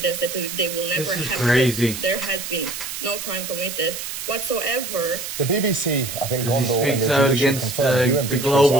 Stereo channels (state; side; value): noise; right; hiss, 7 dB below the sound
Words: that they will never have. This is crazy. There has been no crime committed whatsoever. The BBC, I think, speaks out against the